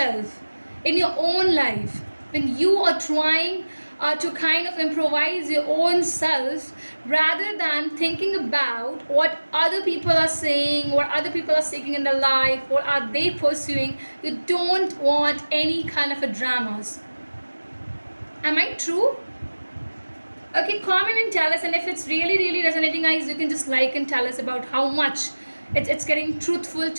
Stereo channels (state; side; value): inverted; both; correlation -1.00